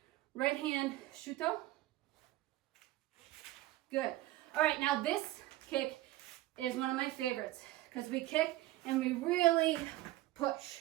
right hand shuto. Good. All right, now this kick is one of my favorites because we kick and we really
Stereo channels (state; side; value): quieter; left; 16.3 dB